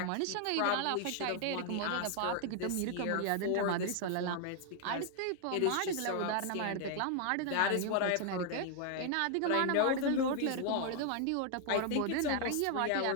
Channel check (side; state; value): both; different; correlation 0.00